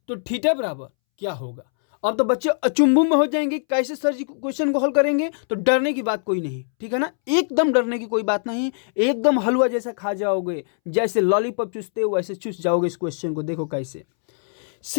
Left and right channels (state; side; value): silent; right; 64 dB below the other